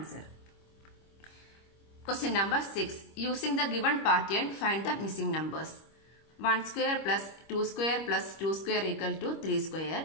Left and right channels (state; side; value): late; right; 25 ms